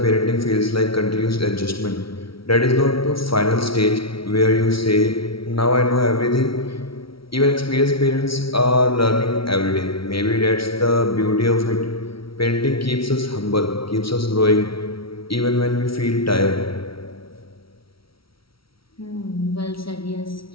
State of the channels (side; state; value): right; late; 0.75 ms